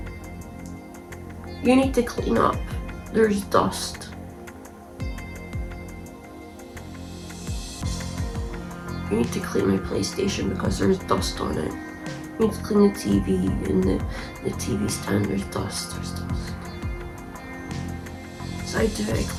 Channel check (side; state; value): both; identical; correlation 1.00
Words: "You need to clean up. There's dust." "You need to clean my PlayStation because there's dust on it. You need to clean the TV and the TV stand, there's dust. So I do it, I